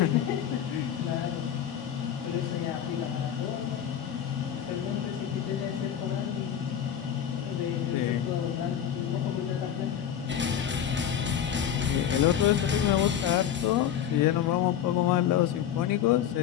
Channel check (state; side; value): quieter; right; 9.6 dB